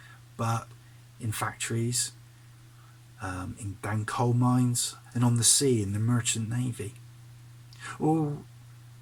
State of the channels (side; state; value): both; identical; correlation 1.00